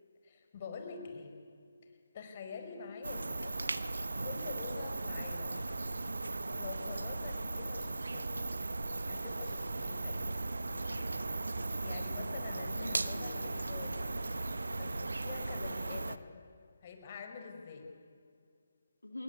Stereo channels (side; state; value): both; inverted; correlation -0.94